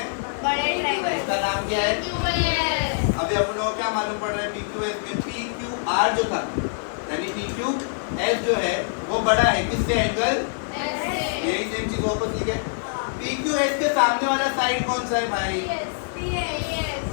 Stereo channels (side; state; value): right; silent; 61 dB below the other